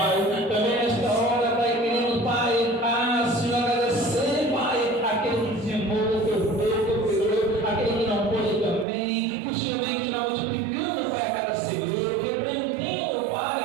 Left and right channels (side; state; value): left; drops out; at 8.8 s